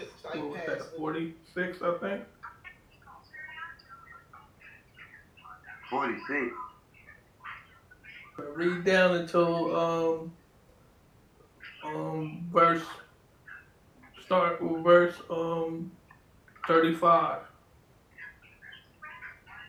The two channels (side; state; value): both; identical; correlation 1.00